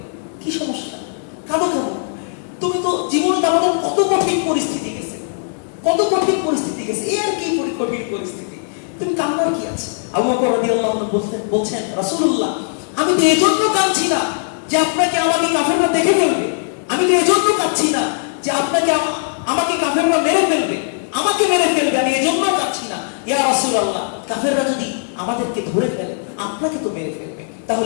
কি সমস্যা? কাঁদো কেন? তুমি তো জীবনে আমাদের কত কঠিন পরিস্থিতি গেছে, এই আর কি কঠিন পরিস্থিতি, তুমি কান্নার কি আছে? আবু বকর রাদিয়াল্লাহু আনহু বলছেন, রাসূলুল্লাহ আমি তো এজন্য কাঁদছি না যে আপনাকে আমাকে কাফেররা দেখে ফেলবে, আমি তো এজন্য কাঁদছি না যে আপনাকে আমাকে কাফেররা মেরে ফেলবে, আমি এজন্য কাঁদছি না। ইয়া রাসূলুল্লাহ, কাফেররা যদি আমাদেরকে ধরে ফেলে আপনাকে তো মেরে ফেলবে,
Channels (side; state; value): right; silent; 65 dB below the other